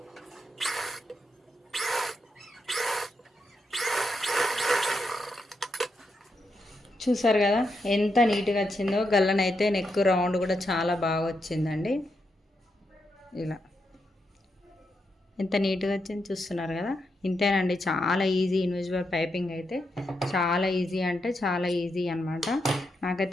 చూసారు కదా ఎంత నీట్గా వచ్చిందో. గల్లనైతే నెక్ రౌండ్ కూడా చాలా బాగా వచ్చిందండి. ఇలా ఎంత నీట్గా వచ్చింది చూస్తున్నారు కదా. ఇంతేనండి, చాలా ఈజీ ఇన్విజిబుల్ పైపింగ్ అయితే. చాలా ఈజీ అంటే చాలా ఈజీ అనమాట.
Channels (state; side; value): normal; both; correlation 0.83